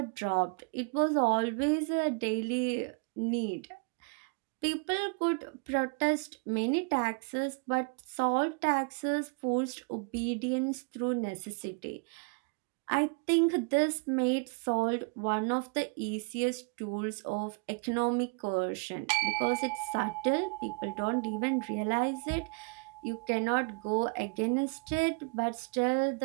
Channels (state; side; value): quieter; left; 34.7 dB